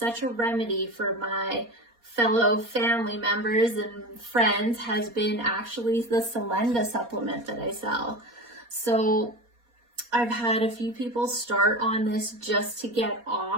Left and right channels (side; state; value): left; late; 4.2 ms